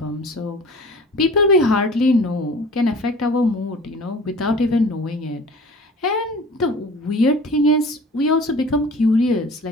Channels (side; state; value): both; normal; correlation 0.43